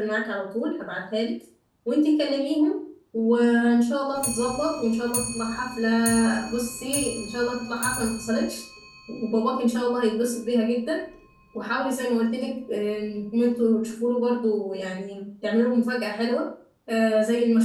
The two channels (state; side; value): identical; both; correlation 1.00